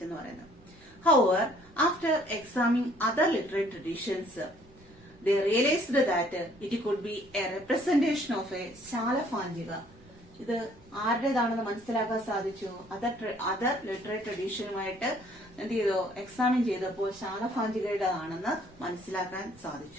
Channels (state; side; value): normal; both; correlation 0.60